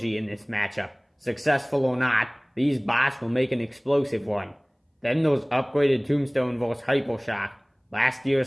in this matchup. Successful or not, these bots will make an explosive one. Then those upgraded Tombstone vs Hypershock. Last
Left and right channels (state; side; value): identical; both; correlation 1.00